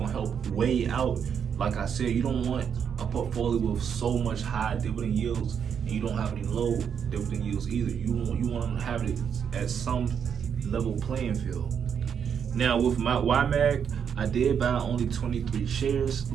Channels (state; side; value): quieter; left; 7.6 dB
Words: help weigh out. Like I said, you don't want a portfolio with so much high dividend yields and you don't have any low dividend yields either. You want to have it at some level playing field. Now with my YMAG, I did buy only 23 shares.